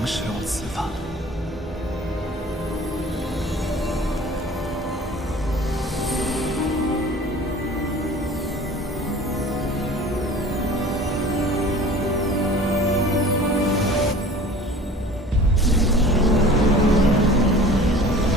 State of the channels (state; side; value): normal; both; correlation 0.44